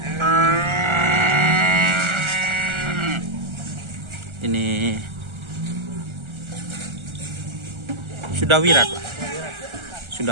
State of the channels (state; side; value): late; left; 1.4 ms